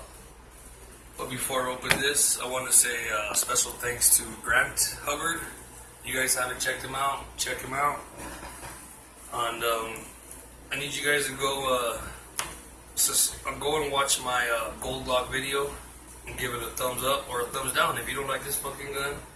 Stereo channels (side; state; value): both; identical; correlation 1.00